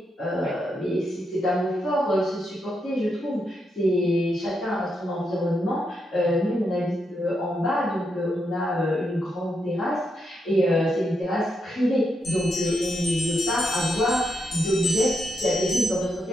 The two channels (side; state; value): both; normal; correlation 0.82